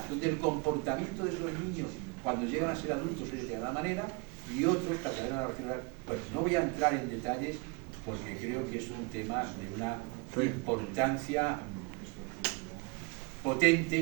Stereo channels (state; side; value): quieter; left; 30.3 dB